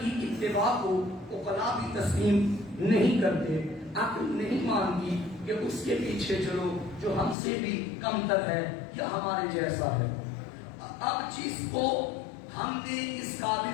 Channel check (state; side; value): drops out; right; at 7.4 s